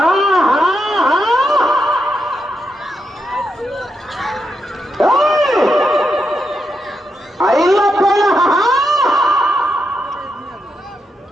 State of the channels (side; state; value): both; normal; correlation 0.84